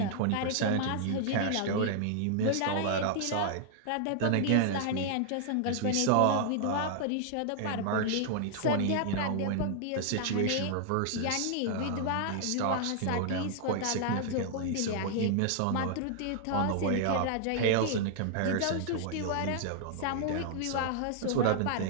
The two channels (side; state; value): both; different; correlation -0.01